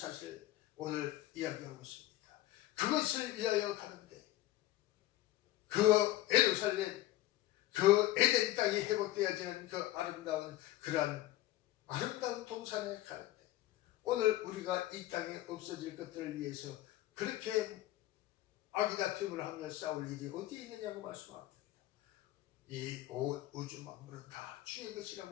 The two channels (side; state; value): right; quieter; 15.5 dB